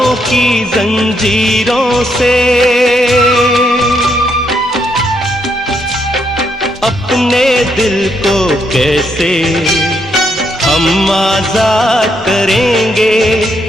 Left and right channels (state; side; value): normal; both; correlation 0.76